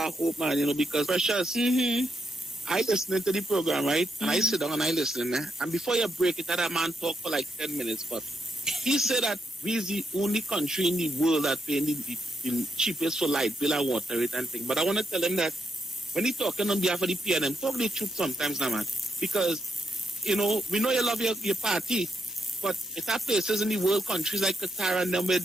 hope, man, because Precious, I listening to the program, right? And I sit down and I listen, and before you break it, that man talk for like 10 minutes, but he said that we is the only country in the world that paying the cheapest for light bill and water rate and thing. But I want to tell him that when he talking on behalf of the PNM, talk the truth sometimes now, man, because we know you love your party, but it's at places in the world, countries like Qatar and them, where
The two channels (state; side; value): normal; both; correlation 0.82